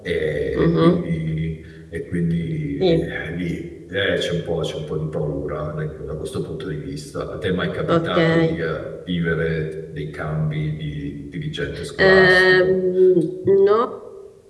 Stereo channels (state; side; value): identical; both; correlation 1.00